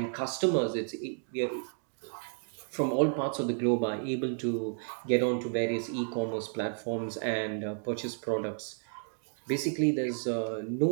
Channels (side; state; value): left; silent; 57 dB below the other